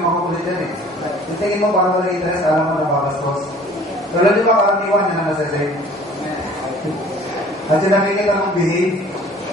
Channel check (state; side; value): normal; both; correlation 0.50